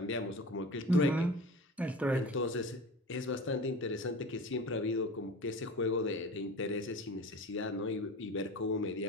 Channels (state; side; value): normal; both; correlation 0.34